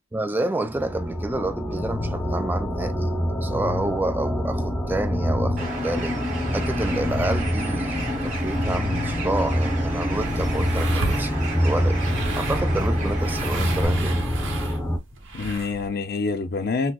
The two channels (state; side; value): normal; both; correlation 0.82